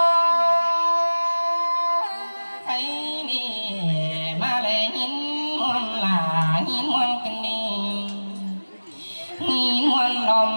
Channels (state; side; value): inverted; both; correlation -1.00